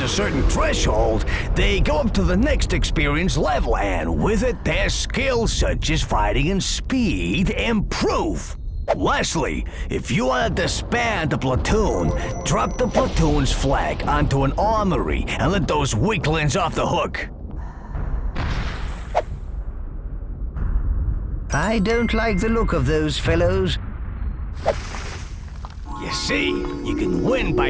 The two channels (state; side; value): identical; both; correlation 1.00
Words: a certain threshold, they go up to the next experience level, and with it, their skills such as fighting and speed improve. Lastly, if you want to disband the platoon, drop the platoon's flag onto an armory and let those weaklings off the hook. I don't like the look of those fellows. You see, you can win